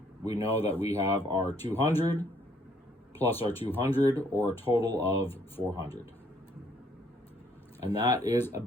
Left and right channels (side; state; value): both; normal; correlation 0.66